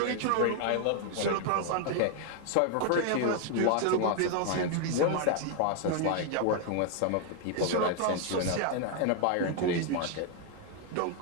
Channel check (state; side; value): different; both; correlation 0.00